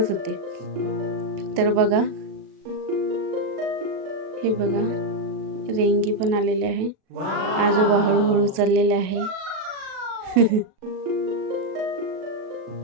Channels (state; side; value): late; left; 37 ms